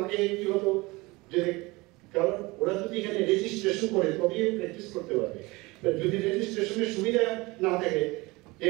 আগে কি হতো যে কারণ ওরা যদি এখানে রেজিস্ট্রেশন করে তবেই প্র্যাকটিস করতে পারবে। যদি রেজিস্ট্রেশনের সুবিধা না থাকে,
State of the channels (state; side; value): quieter; left; 23.1 dB